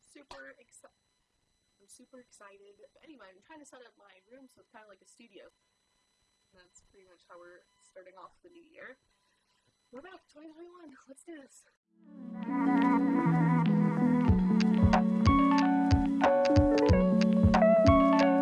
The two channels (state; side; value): identical; both; correlation 1.00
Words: super excited. But anyway, I'm trying to set up my room so it's kind of like a studio. And that's pretty much how we're starting off the new year. We're back, 2021. Let's do this.